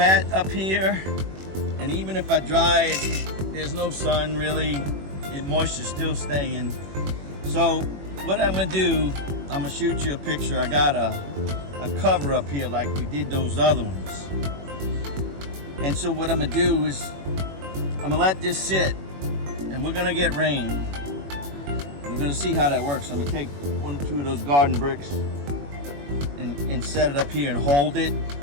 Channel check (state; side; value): late; left; 21 ms